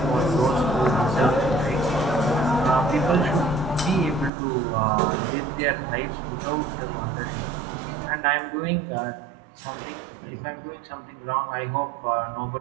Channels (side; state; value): left; drops out; at 4.3 s